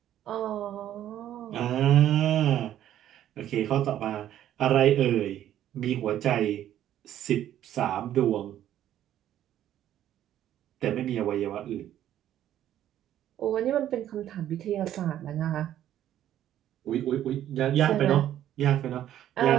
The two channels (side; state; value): left; quieter; 11.7 dB